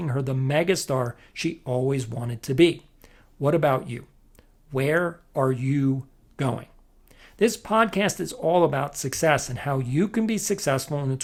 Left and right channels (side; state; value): both; identical; correlation 1.00